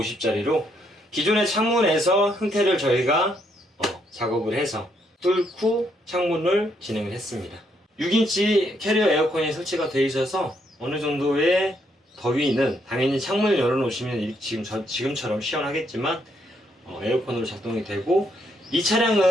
기존의 창문에서 형태를 저희가 작업을 해서 뚫고 창문을 진행을 했습니다. 6인치 캐리어 에어컨이 설치가 되어 있어서 어느 정도의 더위는 당연히 창문을 열어놓으시면 지금처럼 시원하겠지만 에어컨으로 작동이 되고, 이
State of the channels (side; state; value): both; normal; correlation 0.74